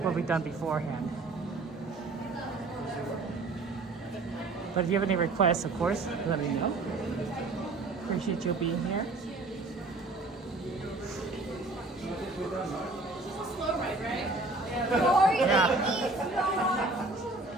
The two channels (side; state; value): left; quieter; 3.2 dB